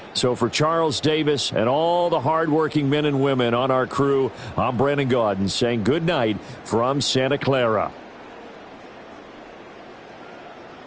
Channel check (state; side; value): identical; both; correlation 1.00